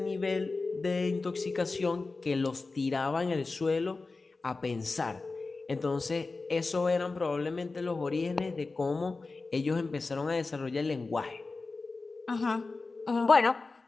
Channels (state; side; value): quieter; right; 3.8 dB